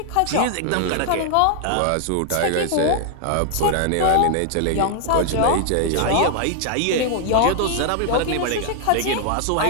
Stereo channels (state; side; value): different; both; correlation 0.00